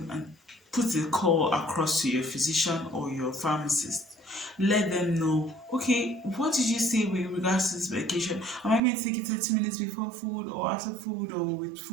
and put a call across to your physician or your pharmacist. Let them know, okay, what did you say with regards to this medication? Am I meant to take it 30 minutes before food or after food or with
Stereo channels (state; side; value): drops out; left; at 8.8 s